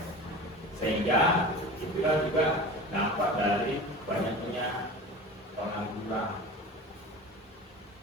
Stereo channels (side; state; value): both; normal; correlation 0.34